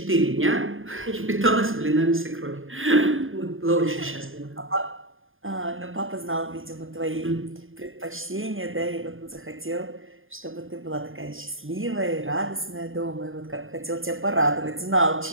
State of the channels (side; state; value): left; late; 0.59 ms